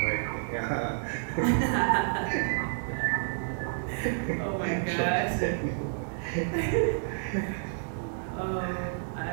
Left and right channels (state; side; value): silent; left; digital silence